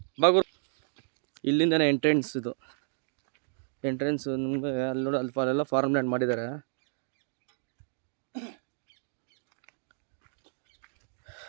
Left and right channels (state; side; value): silent; left; digital silence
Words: ಬಾಗುರು ಇಲ್ಲಿಂದನೇ ಎಂಟ್ರೆನ್ಸ್. ಇದು ಎಂಟ್ರೆನ್ಸ್ ನಿಮಗೆ ಅಲ್ಲಿ ನೋಡಿ, ಅಲ್ಲೆಲ್ಲ ಫಾರ್ಮ್ ಲ್ಯಾಂಡ್ ಮಾಡಿದ್ದಾರೆ.